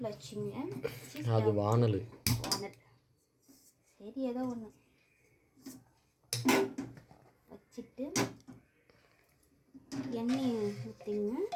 வச்சுங்க. அது வானல் சரி ஏதோ ஒன்று வச்சுட்டு எண்ணெய் ஊற்றிங்க.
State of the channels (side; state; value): both; identical; correlation 1.00